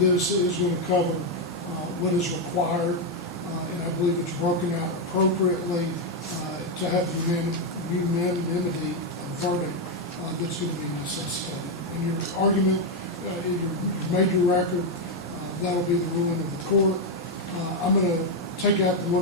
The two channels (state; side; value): normal; both; correlation 0.03